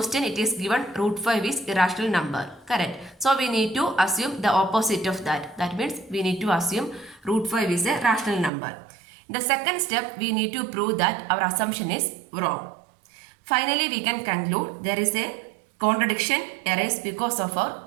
it is given root 5 is irrational number. Correct. So we need to assume the opposite of that. That means we need to assume root 5 is a rational number. In the second step we need to prove that our assumption is wrong. Finally we can conclude there is a contradiction arises because of our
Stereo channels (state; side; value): drops out; left; at 8.5 s